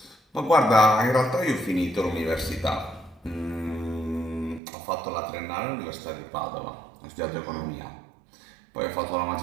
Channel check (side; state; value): left; drops out; at 4.6 s